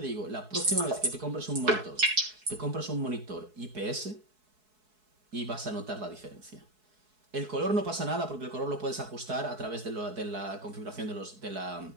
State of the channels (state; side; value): late; left; 4.7 ms